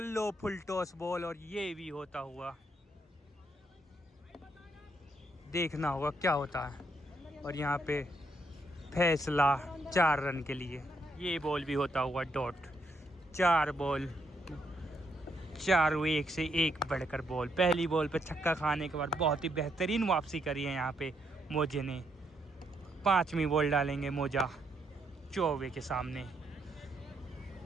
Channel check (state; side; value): normal; both; correlation 0.76